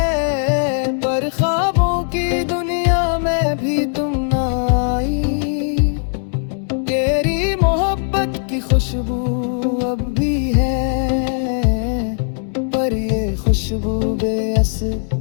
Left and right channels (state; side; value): silent; right; digital silence